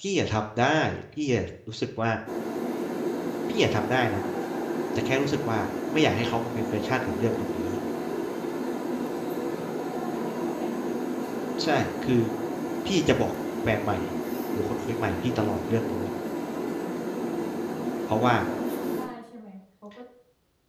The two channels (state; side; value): identical; both; correlation 1.00